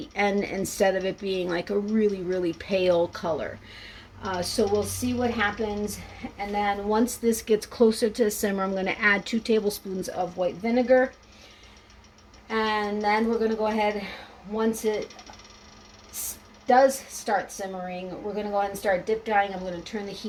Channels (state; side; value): identical; both; correlation 1.00